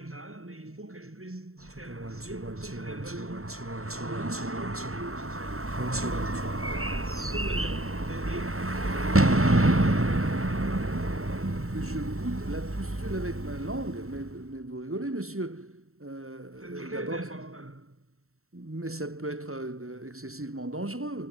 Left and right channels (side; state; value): left; late; 0.63 ms